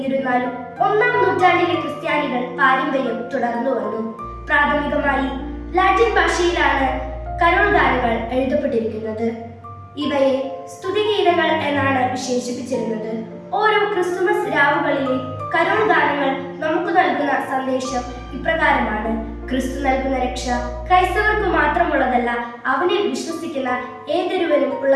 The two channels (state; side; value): identical; both; correlation 1.00